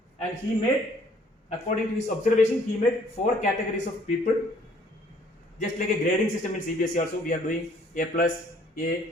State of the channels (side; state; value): both; normal; correlation 0.60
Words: And he made according to his observation, he made 4 categories of people. Just like a grading system in CBSE also, we are doing A plus,